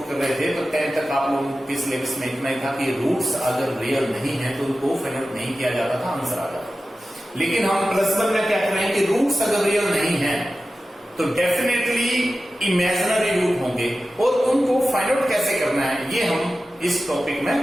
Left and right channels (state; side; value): normal; both; correlation 0.94